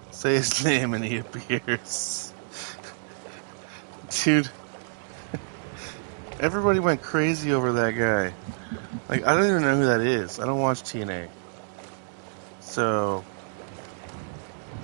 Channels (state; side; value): silent; left; digital silence